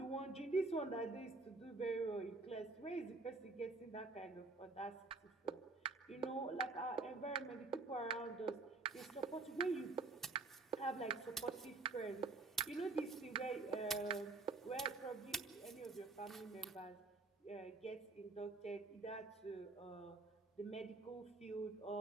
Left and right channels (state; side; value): quieter; left; 3.5 dB